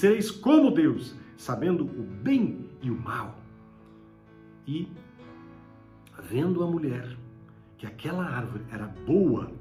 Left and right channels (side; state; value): both; identical; correlation 1.00